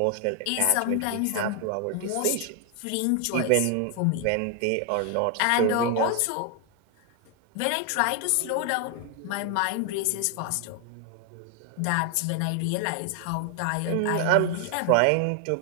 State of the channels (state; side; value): different; both; correlation 0.00